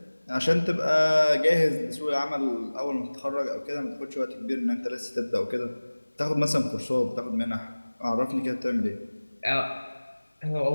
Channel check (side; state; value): both; inverted; correlation -1.00